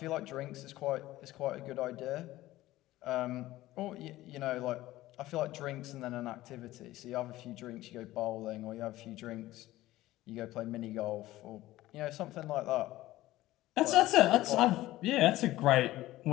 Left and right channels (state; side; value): quieter; right; 16.3 dB